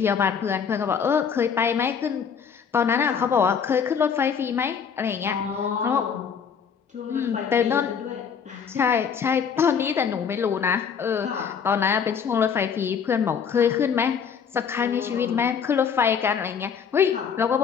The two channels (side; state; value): right; quieter; 6.9 dB